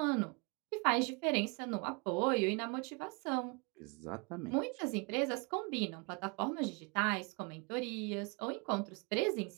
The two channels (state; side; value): quieter; left; 31.2 dB